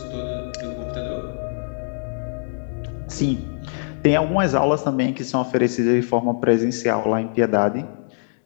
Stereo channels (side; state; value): right; silent; digital silence